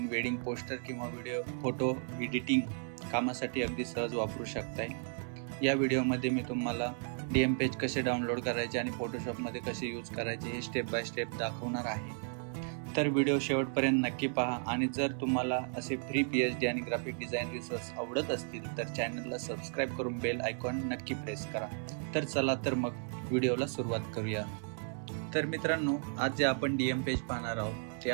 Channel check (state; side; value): silent; left; 55 dB below the other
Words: wedding poster किंवा फोटो एडिटिंग कामासाठी अगदी सहज वापरू शकताय. या व्हिडिओमध्ये मी तुम्हाला DM पेज कसे डाउनलोड करायचे आणि फोटोशॉपमध्ये कसे यूज करायचे हे स्टेप बाय स्टेप दाखवणार आहे. तर व्हिडिओ शेवटपर्यंत नक्की पहा आणि जर तुम्हाला असे फ्री PhD आणि ग्राफिक डिझाईन रिसोर्स आवडत असतील तर चॅनलला सबस्क्राईब करून बेल आयकॉन नक्की प्रेस करा. तर चला तर मग व्हिडिओला सुरुवात करूया. तर मित्रांनो, आज जे आपण DM पेज पाहणार आहोत ते